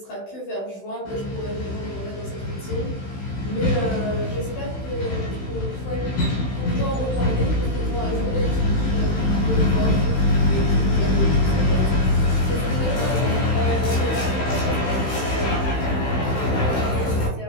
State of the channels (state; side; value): late; right; 16 ms